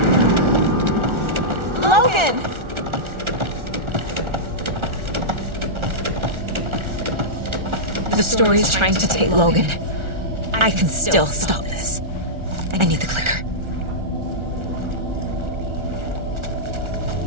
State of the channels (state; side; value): late; left; 1.4 ms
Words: Logan! The story is trying to take Logan. I can still stop this. I need the clicker.